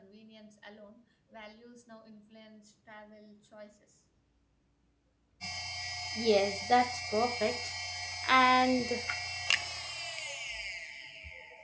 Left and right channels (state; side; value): identical; both; correlation 1.00